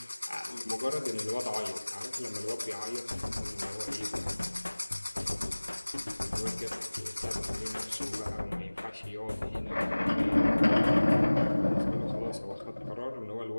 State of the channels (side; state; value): both; inverted; correlation -1.00